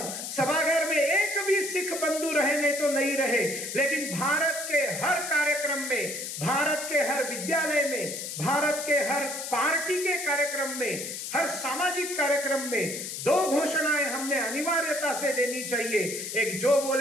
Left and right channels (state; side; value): noise; left; hiss, 6 dB below the sound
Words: सभागार में एक भी सिख बंधु रहे नहीं तो नहीं रहे, लेकिन भारत के हर कार्यक्रम में, भारत के हर विद्यालय में, भारत के हर पार्टी के कार्यक्रम में, हर सामाजिक कार्यक्रम में दो घोषणाएं हमने अनिवार्यता से देनी चाहिए। एक, जो